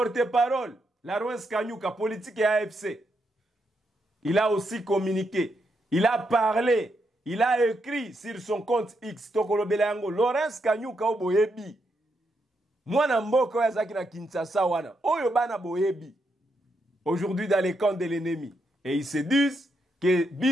Laurence Kanyuka, politique et AFC, il a aussi communiqué. Il a parlé. Il a écrit sur son compte X. Tokolobelango. Laurence Kanyuka o boyebi. Mwana mboko ya zaki na Kinshasa wana. Oyo bana boyebi. Aujourd'hui dans les camps de l'ennemi. Et ils se disent que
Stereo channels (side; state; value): both; normal; correlation 0.80